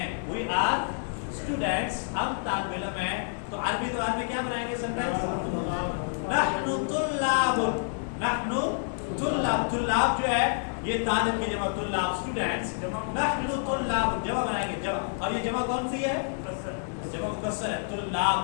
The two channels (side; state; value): right; silent; digital silence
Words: we are students، ہم طالب علم ہیں. تو عربی زبان میں کیا بنائیں گے سینٹینس؟ نحن طلاب، نحن طلاب. طلاب جو ہے یہ طالب کی جمع، طلاب اسٹوڈنٹس. نحن طلاب جمع بنائیں گے، جمع. اور یہ جمع کون سی ہے؟ جمع مکسر ہے.